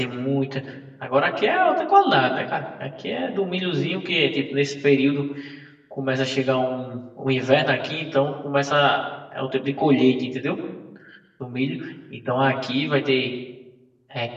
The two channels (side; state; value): both; identical; correlation 1.00